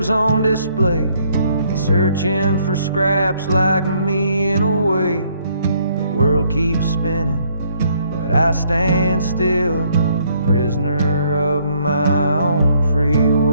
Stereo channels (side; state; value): both; inverted; correlation -0.67